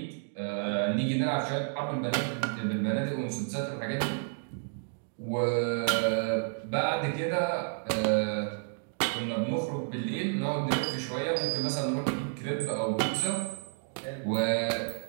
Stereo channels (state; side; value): silent; left; 57 dB below the other